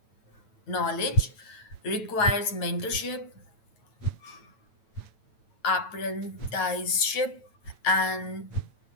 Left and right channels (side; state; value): right; late; 9.0 ms